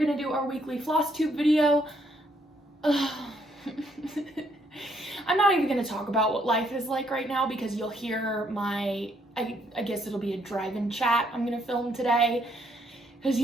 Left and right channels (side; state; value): both; normal; correlation 0.71